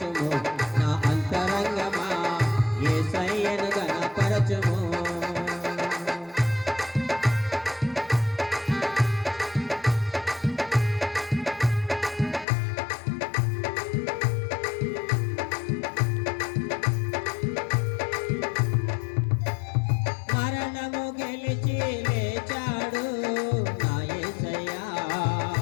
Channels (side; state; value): right; drops out; at 12.5 s